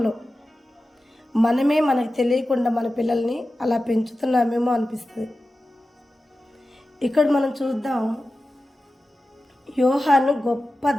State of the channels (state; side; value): normal; both; correlation 0.94